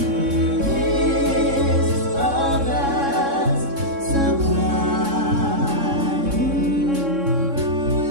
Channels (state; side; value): late; left; 3.6 ms